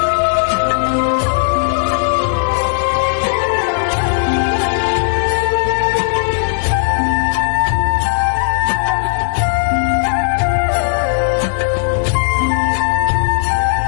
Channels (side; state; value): right; silent; digital silence